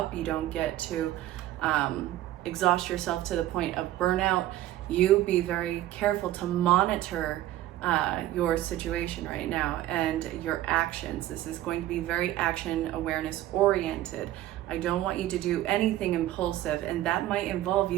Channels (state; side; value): quieter; left; 14.3 dB